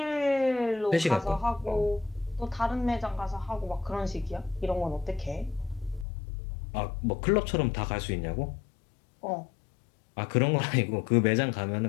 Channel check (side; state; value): right; drops out; at 6.1 s